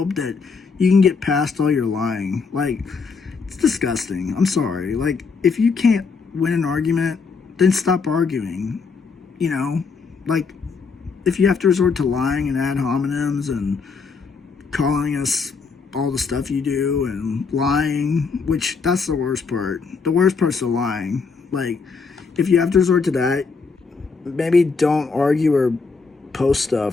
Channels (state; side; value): quieter; right; 4.9 dB